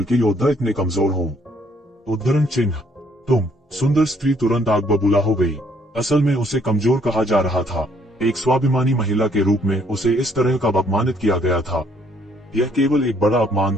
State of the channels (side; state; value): both; normal; correlation 0.66